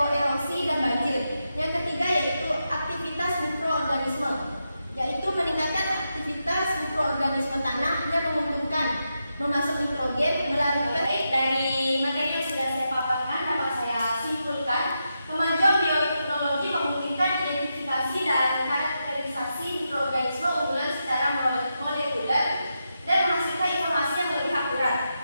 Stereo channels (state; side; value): inverted; both; correlation -0.86